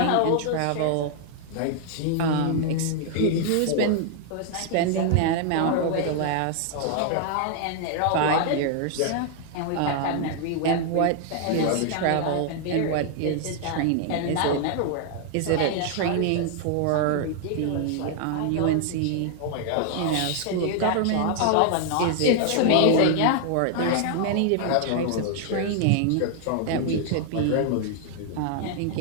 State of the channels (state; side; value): different; both; correlation 0.00